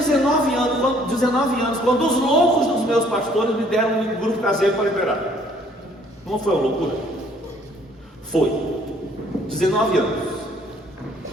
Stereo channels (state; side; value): normal; both; correlation 0.61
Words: anos, quando os loucos dos meus pastores me deram um grupo caseiro para liberar. Não foi uma loucura? Foi. 19 anos.